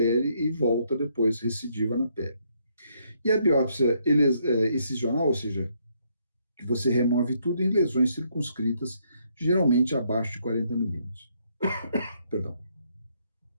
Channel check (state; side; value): inverted; both; correlation -0.72